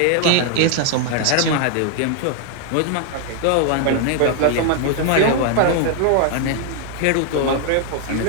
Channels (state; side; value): different; both; correlation 0.00